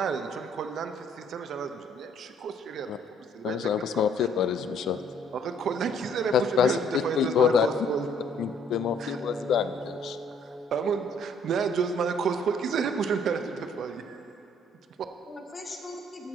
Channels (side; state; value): both; normal; correlation 0.62